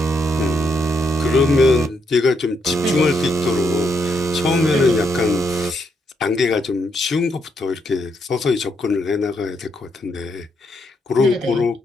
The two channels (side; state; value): both; normal; correlation 0.77